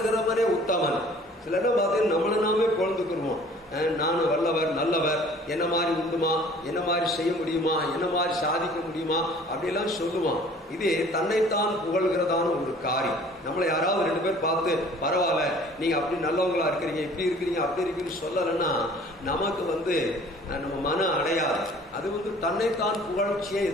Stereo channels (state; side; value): normal; both; correlation 0.51